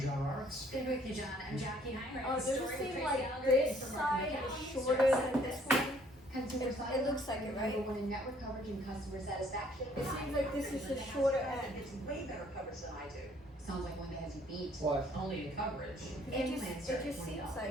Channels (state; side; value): normal; both; correlation 0.61